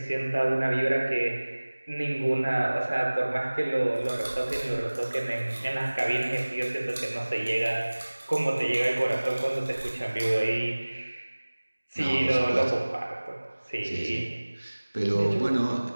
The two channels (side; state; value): both; inverted; correlation -1.00